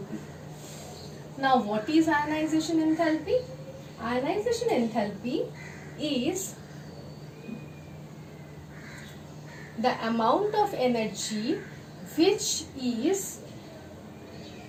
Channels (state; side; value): identical; both; correlation 1.00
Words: Now, what is ionization enthalpy? Ionization enthalpy is the amount of energy which is